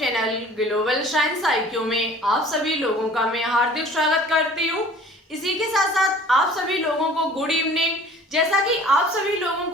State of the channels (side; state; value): both; normal; correlation 0.49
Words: global science IQ में आप सभी लोगों का मैं हार्दिक स्वागत करती हूँ। इसी के साथ साथ आप सभी लोगों को गुड इवनिंग। जैसा कि आप सभी लोगों